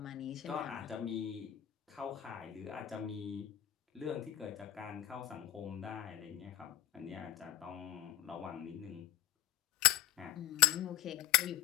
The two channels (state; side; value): quieter; right; 13.5 dB